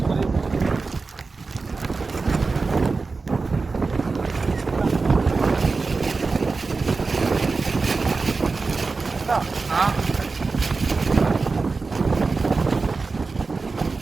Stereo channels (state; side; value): quieter; left; 4.1 dB